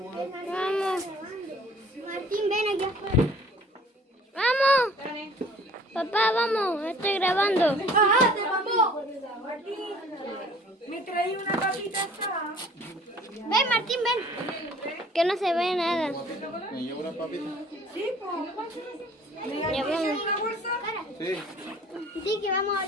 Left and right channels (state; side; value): normal; both; correlation 0.51